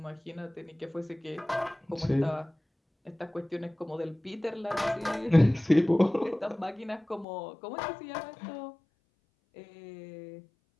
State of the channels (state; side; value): drops out; right; at 7.2 s